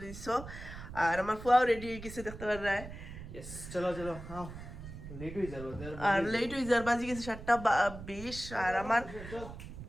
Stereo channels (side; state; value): right; noise; rumble, 12 dB below the sound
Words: দিছ আর আমার ফুয়াও রেডি হয়ে গেছে দেখতে পারা यस चलो चलो हाँ लेट हुई जरूर আর লেট হয়ে যার বাজি গেছে 7:20 আর আমার